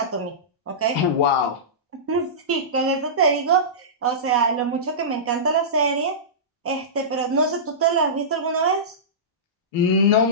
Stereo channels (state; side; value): normal; both; correlation -0.19